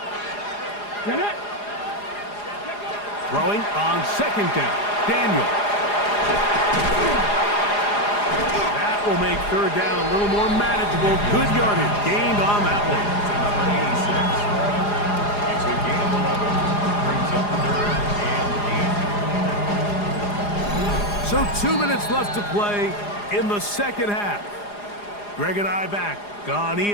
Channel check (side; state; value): right; late; 4.9 ms